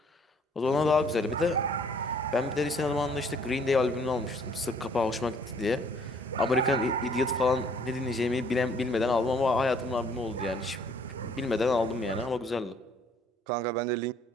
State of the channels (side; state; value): both; normal; correlation 0.60